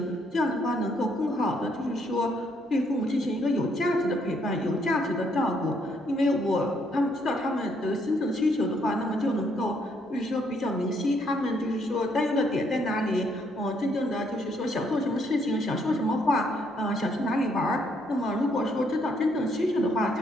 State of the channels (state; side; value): normal; both; correlation 0.71